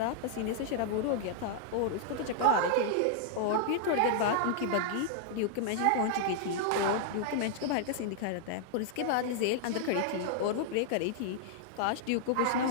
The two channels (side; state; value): both; different; correlation -0.01